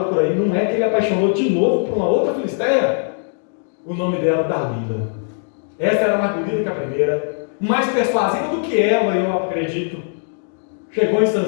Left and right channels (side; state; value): right; silent; digital silence